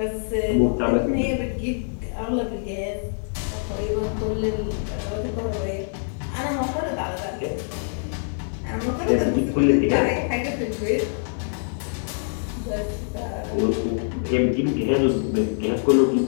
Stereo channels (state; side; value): silent; right; digital silence